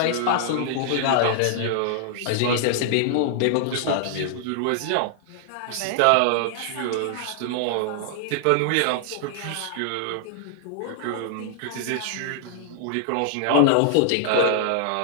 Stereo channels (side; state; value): both; different; correlation 0.00